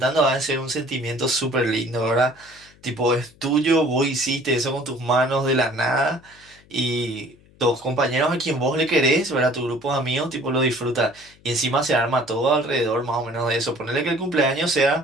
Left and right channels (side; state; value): left; noise; hum, 28 dB below the sound